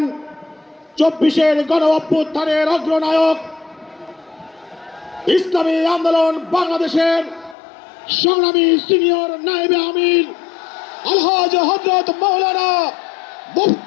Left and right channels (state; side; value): drops out; right; at 7.6 s